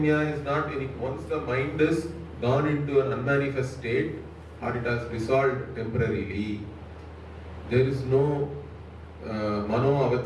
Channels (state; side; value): identical; both; correlation 1.00